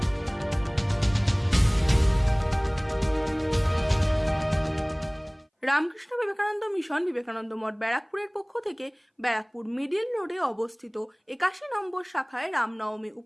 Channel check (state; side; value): identical; both; correlation 1.00